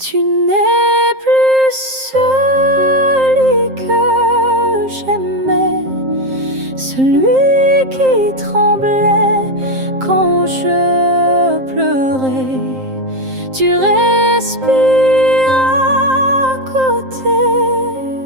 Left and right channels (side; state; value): left; late; 7.6 ms